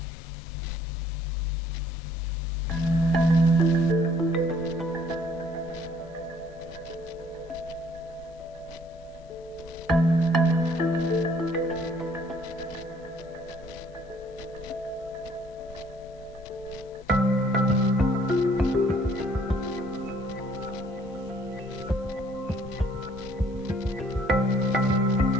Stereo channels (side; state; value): both; normal; correlation 0.61